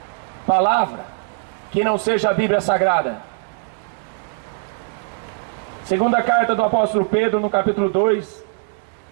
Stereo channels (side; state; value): left; silent; digital silence